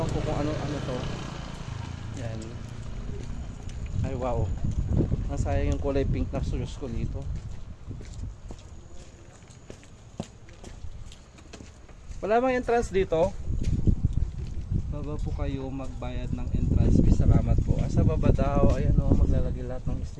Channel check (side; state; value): both; identical; correlation 1.00